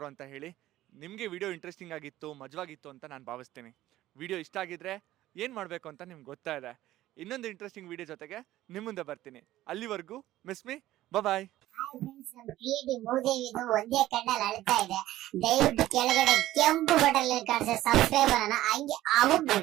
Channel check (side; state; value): left; quieter; 14.9 dB